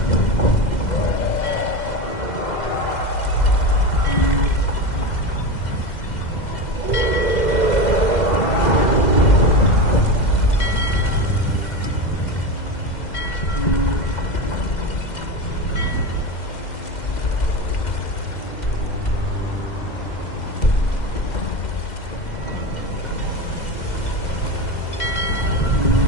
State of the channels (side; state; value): right; late; 2.0 ms